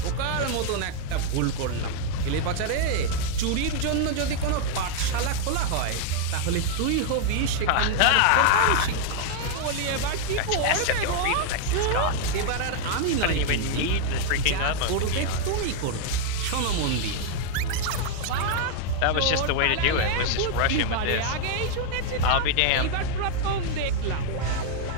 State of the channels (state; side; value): different; both; correlation 0.00